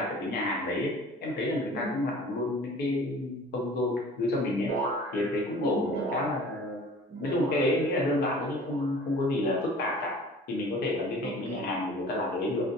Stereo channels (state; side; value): normal; both; correlation 0.46